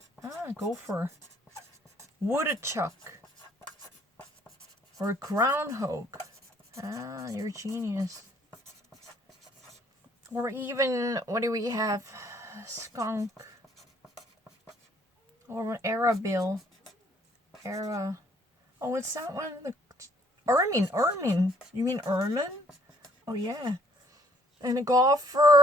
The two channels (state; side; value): normal; both; correlation 0.62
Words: Gopher. Woodchuck. Or groundhog. You're a genius. Or even, what do we have? Skunk. Or an arabill. Oh, what's that one? The ermine. You mean ermine? Oh, yeah. And a